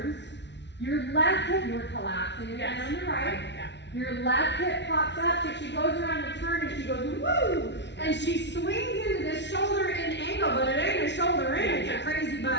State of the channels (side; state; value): right; late; 0.51 ms